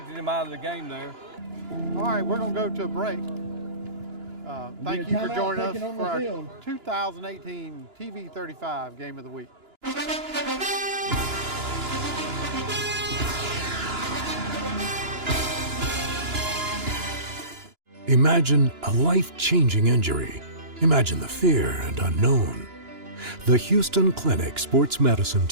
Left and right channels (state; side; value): late; left; 2.9 ms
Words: him out of the game there. All right, we're going to go to a break. Thank you for timeout joining us taken on for the our field. 2018 TV 35 Game of the Week. Imagine a life-changing injury. Imagine the fear and unknown. The Houston Clinic Sports Medicine